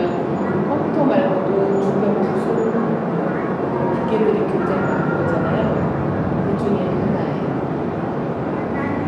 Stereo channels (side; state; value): both; identical; correlation 1.00